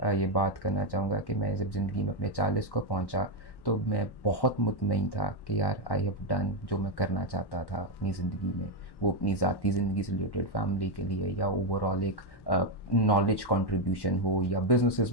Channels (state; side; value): late; right; 1.1 ms